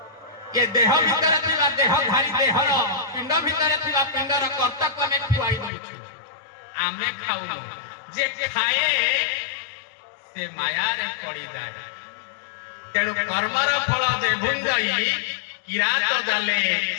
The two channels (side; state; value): right; drops out; at 5.7 s